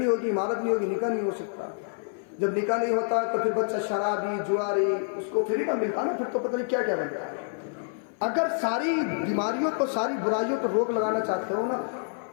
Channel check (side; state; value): right; silent; 57 dB below the other